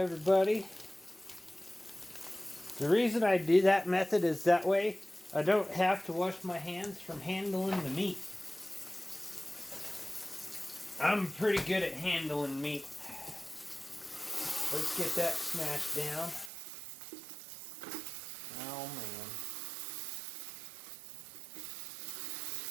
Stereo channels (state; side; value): drops out; left; at 16.5 s